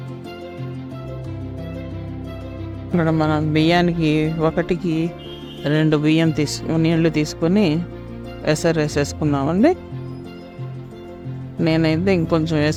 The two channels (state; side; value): identical; both; correlation 1.00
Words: ఇక్కడ మనం బియ్యానికి 1కి 2 బియ్యం నీళ్లు తీసుకొని ఎసరు వేసేసుకున్నామండి. నేనైతే ఇంకొంచెం